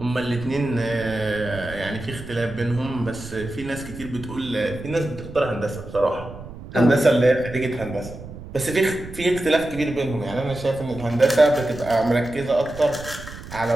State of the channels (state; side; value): noise; right; rumble, 13 dB below the sound